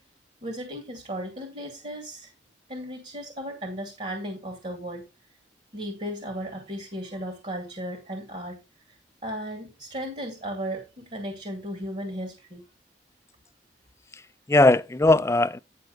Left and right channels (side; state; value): both; normal; correlation 0.64